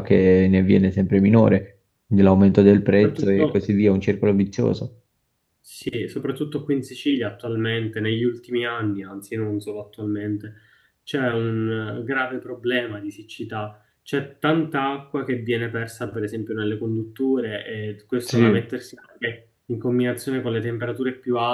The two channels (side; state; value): both; identical; correlation 1.00